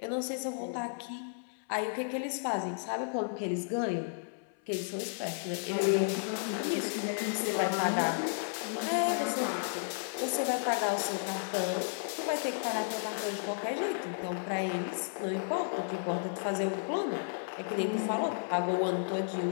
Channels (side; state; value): right; silent; 56 dB below the other